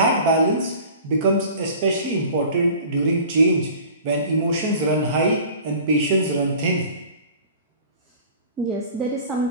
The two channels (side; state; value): both; inverted; correlation -0.44